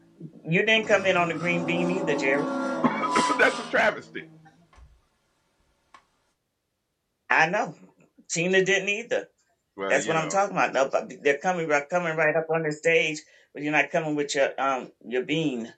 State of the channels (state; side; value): identical; both; correlation 1.00